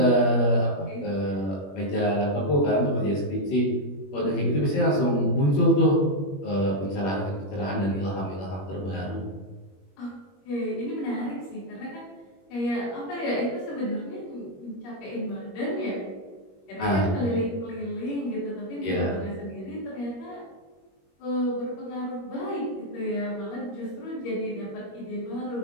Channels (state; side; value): late; right; 21 ms